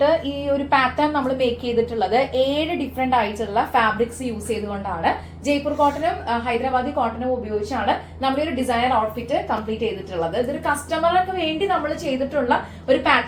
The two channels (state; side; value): identical; both; correlation 1.00